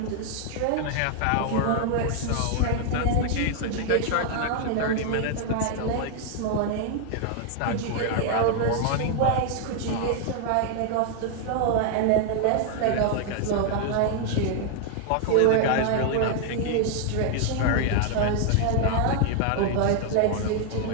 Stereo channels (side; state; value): both; different; correlation 0.00